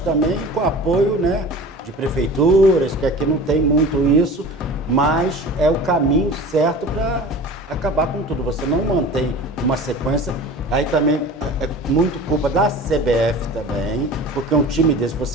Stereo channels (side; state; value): both; normal; correlation 0.38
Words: também, com apoio, né, de prefeituras, que aqui não tem muito isso, mas é o caminho certo para acabar com tudo. Você não mantém uma sequência. Aí também é muito culpa da CBF também, porque um time desse,